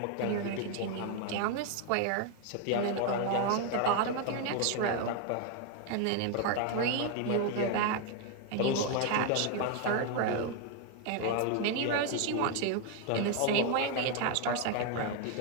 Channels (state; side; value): different; both; correlation 0.01